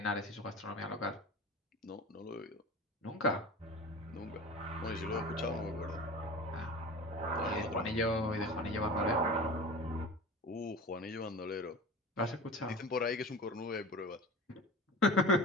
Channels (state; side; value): normal; both; correlation 0.35